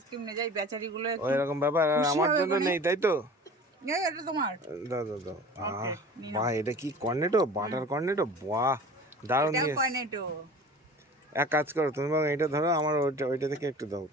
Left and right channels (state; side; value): normal; both; correlation 0.40